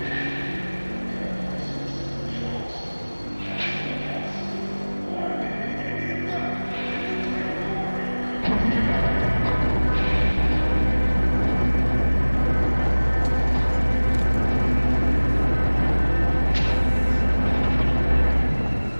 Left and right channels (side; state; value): both; inverted; correlation -1.00